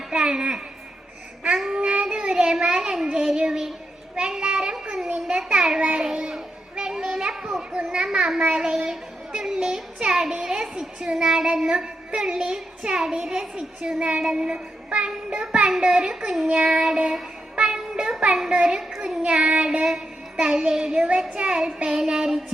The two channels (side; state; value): both; normal; correlation 0.85